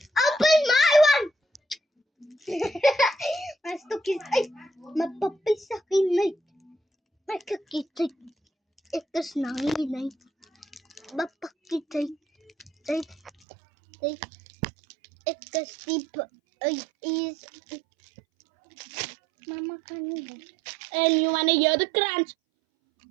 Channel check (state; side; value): drops out; left; at 13.3 s